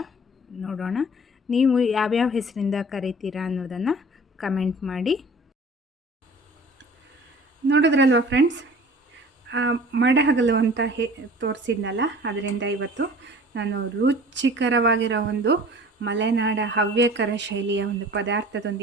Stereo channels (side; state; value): both; normal; correlation 0.45